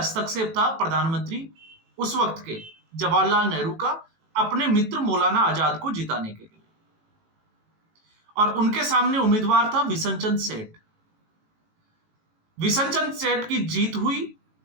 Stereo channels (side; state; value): left; late; 18 ms